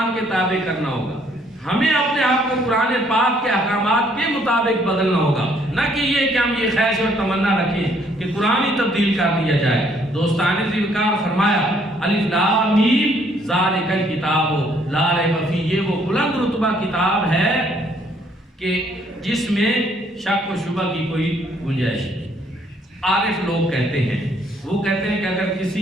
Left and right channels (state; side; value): normal; both; correlation 0.66